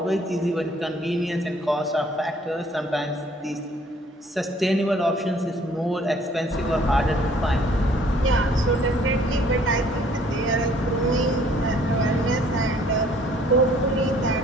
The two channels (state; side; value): normal; both; correlation 0.58